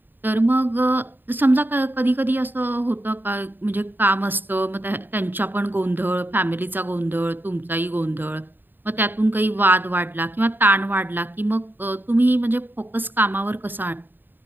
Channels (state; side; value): late; left; 0.093 ms